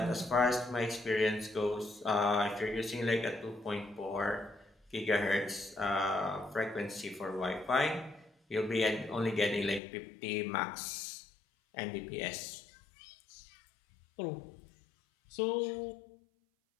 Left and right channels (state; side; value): drops out; right; at 9.8 s